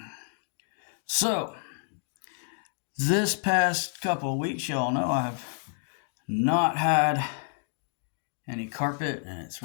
So, this past couple of weeks, y'all know I've not had any carpet, and it's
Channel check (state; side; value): silent; right; 58 dB below the other